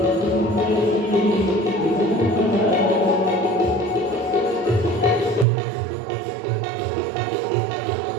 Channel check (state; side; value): drops out; left; at 5.5 s